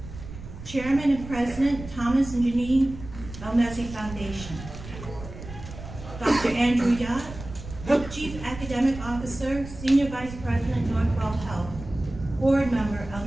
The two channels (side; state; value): right; noise; rumble, 12 dB below the sound